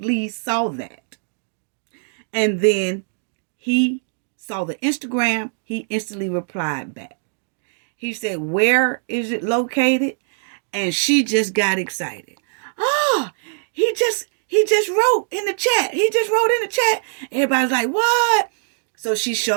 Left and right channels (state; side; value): silent; left; digital silence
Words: saw that. And then he saw the Instagram. He instantly replied back. He said, where is it located? And she just got excited. Oh, he just wrote in the chat. Everybody's like, what? So she